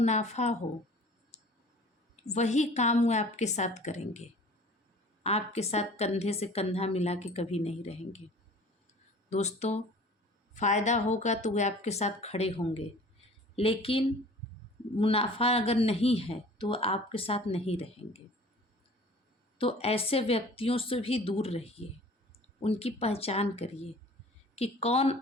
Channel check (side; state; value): both; normal; correlation 0.46